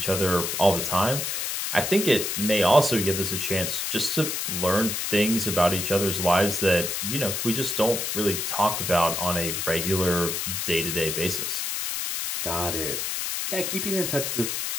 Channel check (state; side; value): noise; left; hiss, 2 dB below the sound